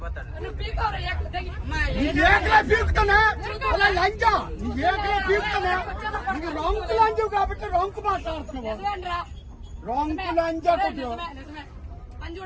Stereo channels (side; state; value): both; identical; correlation 1.00